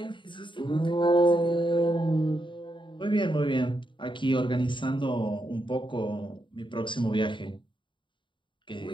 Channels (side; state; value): right; late; 0.23 ms